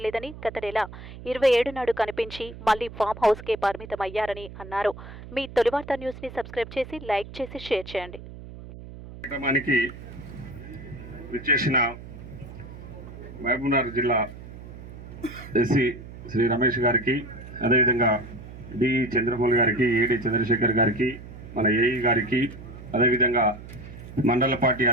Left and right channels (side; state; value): right; noise; hum, 14 dB below the sound